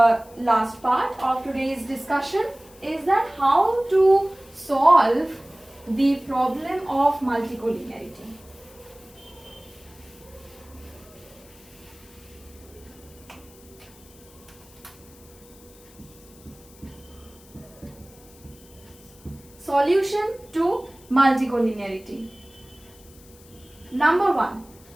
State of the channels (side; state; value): left; noise; hiss, 24 dB below the sound